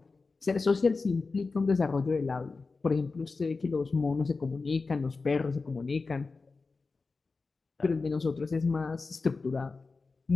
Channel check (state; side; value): quieter; right; 4.1 dB